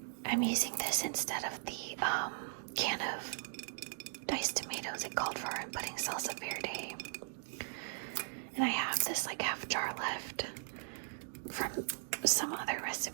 I'm using this instead of the can of diced tomatoes it called for. I'm putting salsa verde. And I have this half jar left from some other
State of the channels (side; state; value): left; silent; digital silence